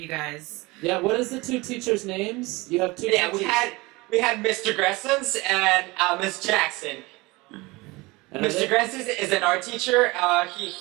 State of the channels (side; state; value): left; quieter; 23.1 dB